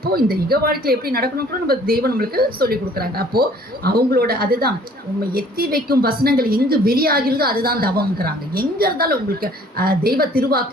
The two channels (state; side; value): normal; both; correlation 0.55